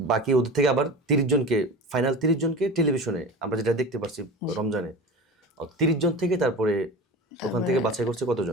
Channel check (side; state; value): both; normal; correlation 0.32